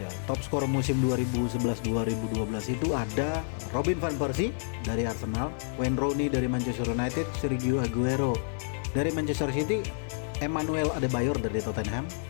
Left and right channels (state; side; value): silent; right; 58 dB below the other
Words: Top skor musim 2011-2012 itu ada Robin van Persie dari Arsenal, Wayne Rooney dari Manchester United, Sergio Aguero dari Manchester City, Emmanuel Adebayor dari Tottenham,